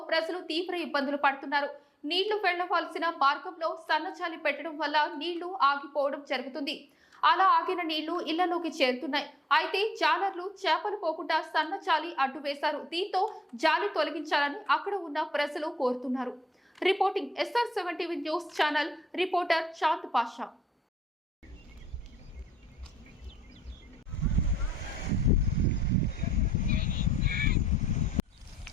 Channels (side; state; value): both; normal; correlation 0.75